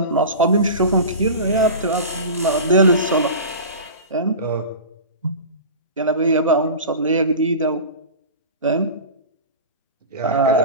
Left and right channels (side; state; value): both; inverted; correlation -0.32